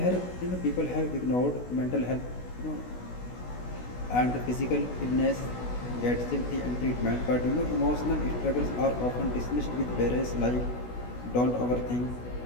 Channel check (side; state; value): right; late; 16 ms